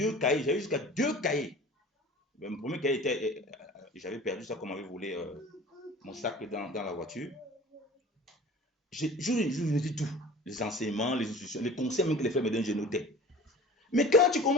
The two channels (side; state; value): both; normal; correlation 0.42